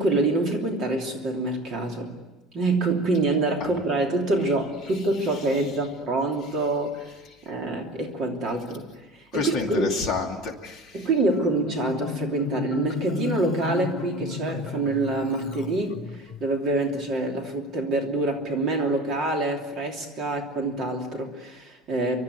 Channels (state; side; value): normal; both; correlation 0.38